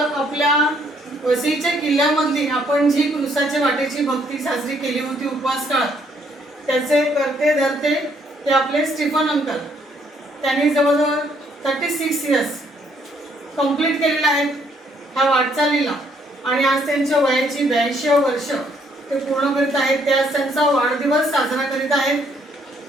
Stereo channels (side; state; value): both; normal; correlation 0.68